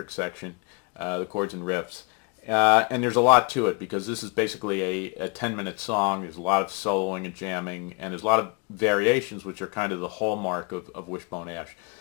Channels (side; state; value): right; quieter; 32.2 dB